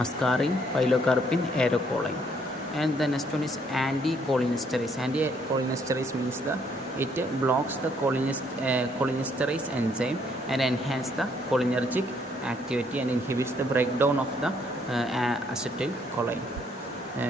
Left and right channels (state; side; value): normal; both; correlation 0.68